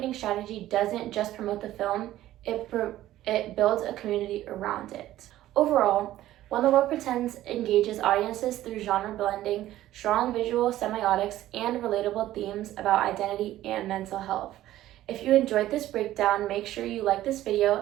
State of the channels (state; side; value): quieter; left; 14.2 dB